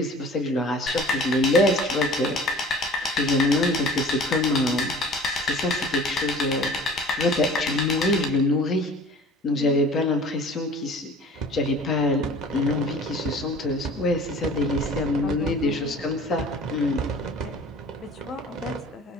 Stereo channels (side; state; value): both; normal; correlation 0.45